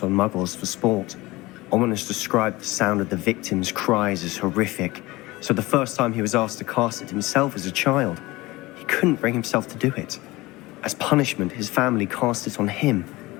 on muggles for sport. Ominous described the sound of the victim's cries as horrific, so the first time he was asked to cast it himself as a child, he couldn't bring himself to do it. As punishment, his family cast it on him.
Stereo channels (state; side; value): quieter; right; 20.4 dB